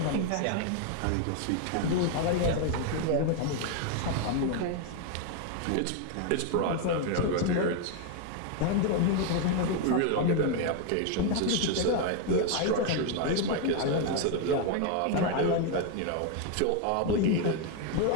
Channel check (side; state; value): both; different; correlation 0.01